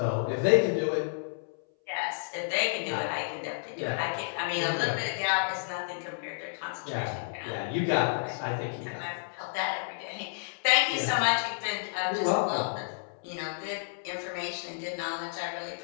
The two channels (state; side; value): silent; right; 57 dB below the other